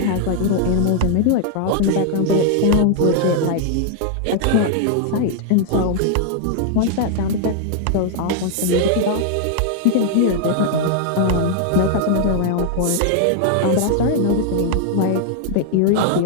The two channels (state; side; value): different; both; correlation 0.00